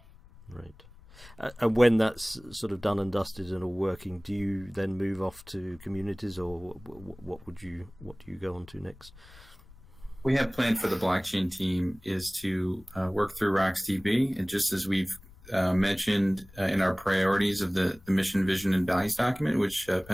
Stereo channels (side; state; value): left; noise; rumble, 22 dB below the sound